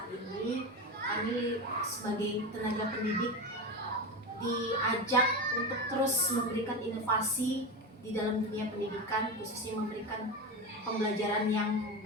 ini. Kami sebagai tenaga pendidik diajak untuk terus memberikan inovasi di dalam dunia pendidikan, khususnya memberikan pembelajaran yang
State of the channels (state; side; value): normal; both; correlation 0.20